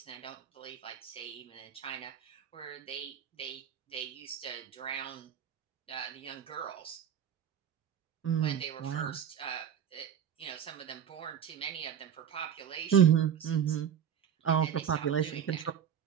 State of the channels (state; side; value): quieter; left; 8.7 dB